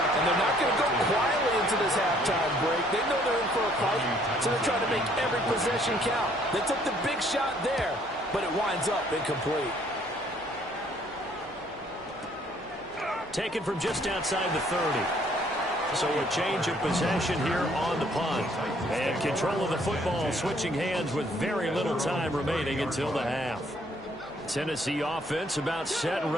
And they're not going to go quietly into this halftime break. They know they're in for a fight, so they're trying to make every possession count. They took the big shot there, but it winds up incomplete. Taken from just outside the 30. So a change of possession here on the punt. And control of the football switching hands with very little time remaining until the half. Tennessee offense about set and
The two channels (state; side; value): noise; right; hum, 27 dB below the sound